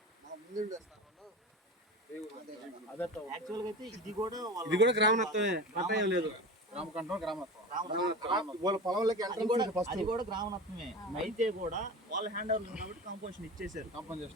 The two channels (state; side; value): normal; both; correlation 0.30